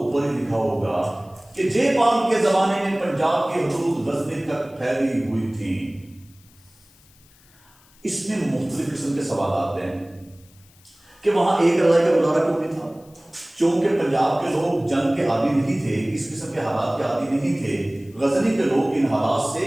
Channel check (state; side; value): noise; left; hiss, 29 dB below the sound